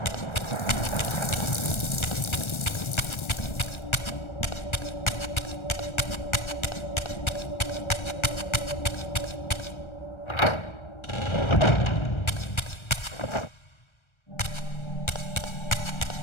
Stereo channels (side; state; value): right; late; 1.3 ms